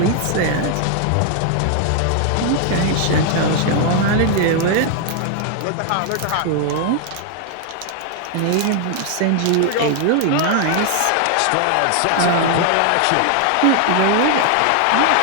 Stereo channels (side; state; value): both; different; correlation 0.00